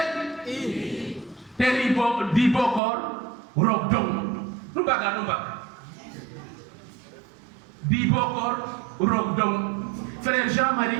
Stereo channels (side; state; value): left; drops out; at 2.8 s